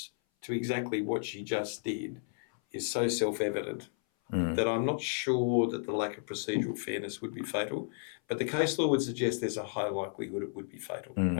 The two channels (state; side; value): silent; right; 56 dB below the other